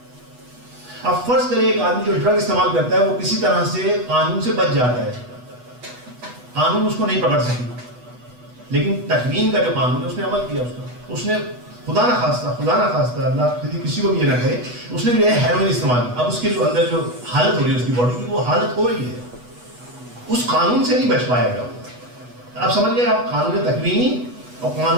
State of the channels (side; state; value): left; late; 8.1 ms